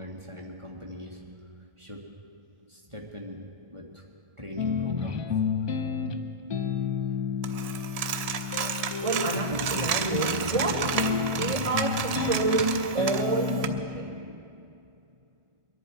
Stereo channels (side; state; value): left; late; 1.7 ms